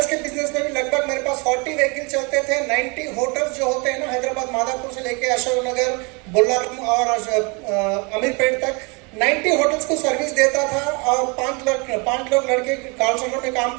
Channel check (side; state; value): left; quieter; 30.6 dB